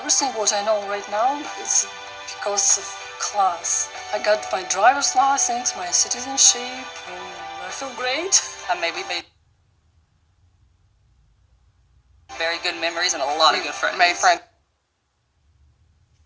what I know right now is because of class. I got my driver's license, my citizenship, and I feel great. I maybe made very good memories and a lot of good friends. Made friends.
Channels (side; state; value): both; identical; correlation 1.00